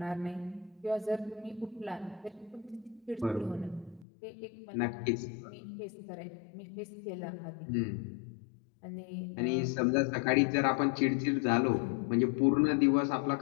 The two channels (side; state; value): right; drops out; at 4.0 s